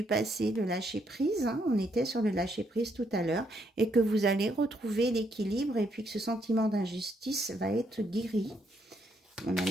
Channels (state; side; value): normal; both; correlation 0.74